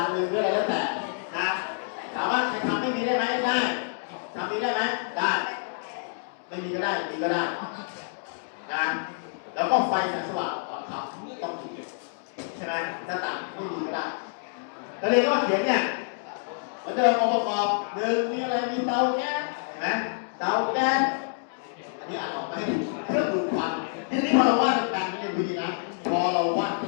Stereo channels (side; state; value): right; silent; digital silence